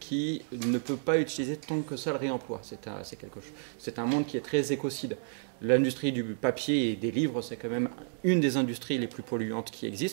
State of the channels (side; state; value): left; silent; digital silence